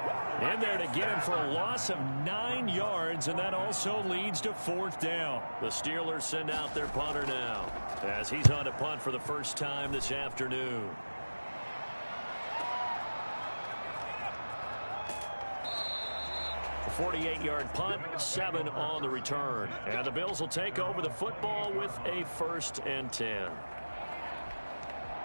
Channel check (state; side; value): inverted; both; correlation -1.00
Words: in there to get him for a loss of 9 yards, and that also leads to 4th down. The Steelers send out their punter now as he's on to punt for the first time this afternoon. A 48-yard punt, 7 on the return. And the Bills will take over the football with a 1st and 10.